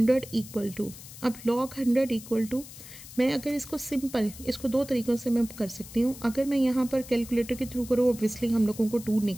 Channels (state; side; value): noise; left; hiss, 16 dB below the sound